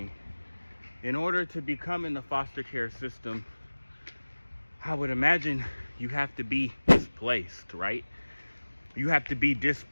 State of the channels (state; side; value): inverted; both; correlation -1.00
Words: In order to become in the foster care system, I would imagine you have to be displaced, right? You have to be